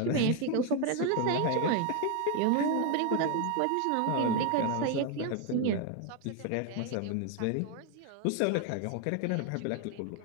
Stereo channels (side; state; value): both; different; correlation 0.01